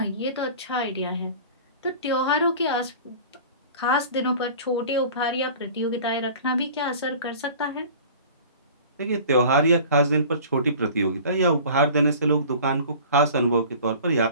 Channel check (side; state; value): both; inverted; correlation -0.43